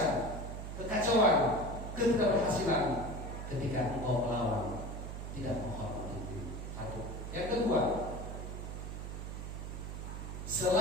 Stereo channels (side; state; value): right; noise; hum, 7 dB below the sound